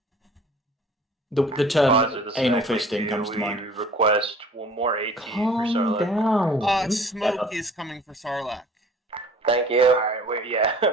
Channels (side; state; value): both; normal; correlation 0.49